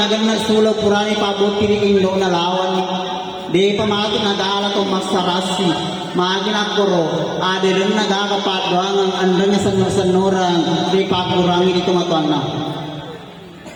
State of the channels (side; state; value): both; identical; correlation 1.00